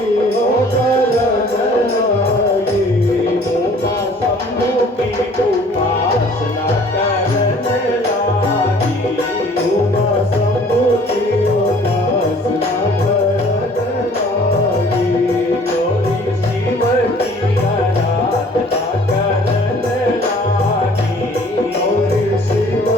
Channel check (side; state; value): both; normal; correlation 0.53